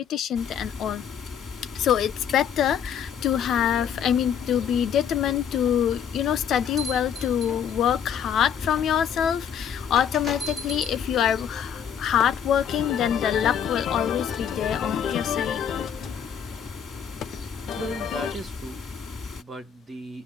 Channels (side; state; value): right; quieter; 8.4 dB